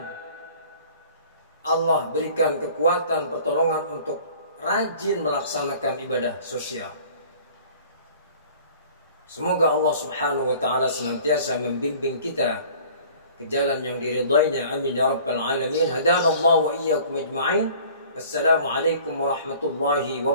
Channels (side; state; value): both; inverted; correlation -0.49